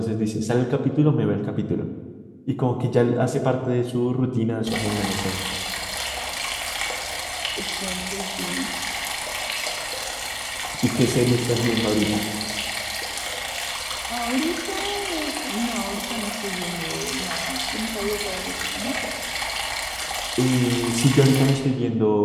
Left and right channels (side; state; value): both; identical; correlation 1.00